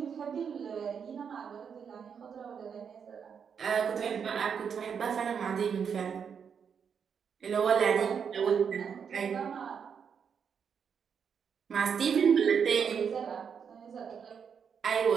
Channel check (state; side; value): quieter; left; 6.9 dB